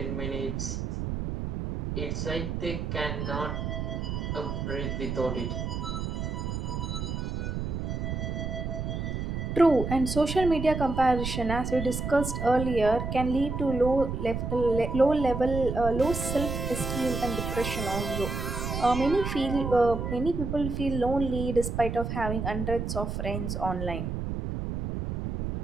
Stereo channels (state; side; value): noise; right; rumble, 3 dB below the sound